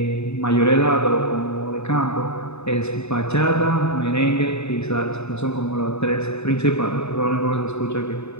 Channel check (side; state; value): right; late; 0.80 ms